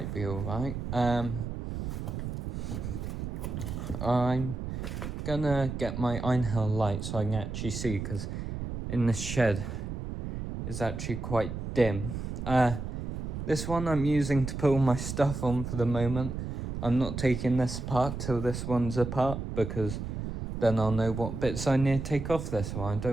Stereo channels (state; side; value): noise; right; rumble, 5 dB below the sound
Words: be alright. I'm gonna get my Einhell light so I can actually see, because in this shed is actually quite dim. This one I'm using to put all my stuff on for the moment. I'm not taking this apart till this one's apart, because then I'll know what bits I need to take off this one. I